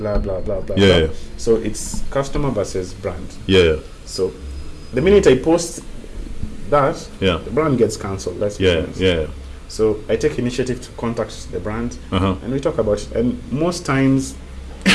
blah blah blah. So it's customer versus brand. So the minute I post that, the brand gets cancelled. That's So I take initiative to contact the brand and we talk about it. And most times,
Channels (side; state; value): both; identical; correlation 1.00